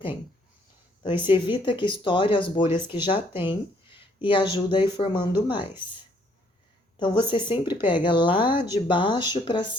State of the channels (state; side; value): normal; both; correlation 0.66